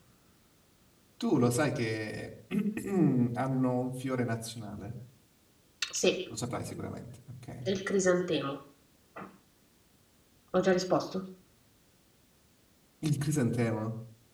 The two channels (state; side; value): identical; both; correlation 1.00